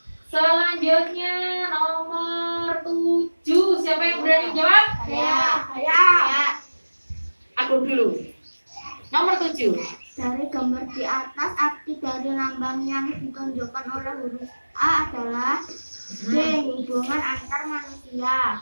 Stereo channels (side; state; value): both; inverted; correlation -1.00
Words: Selanjutnya nomor 7. Siapa yang berani jawab? Saya. Aku dulu. Nomor 7. Dari gambar di atas, arti dari lambang yang ditunjukkan oleh huruf A adalah D, hubungan antar manusia.